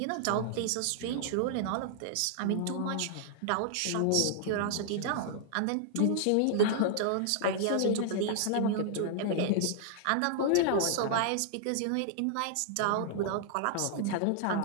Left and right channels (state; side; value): different; both; correlation -0.01